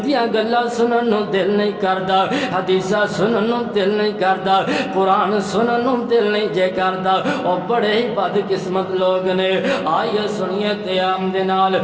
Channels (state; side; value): identical; both; correlation 1.00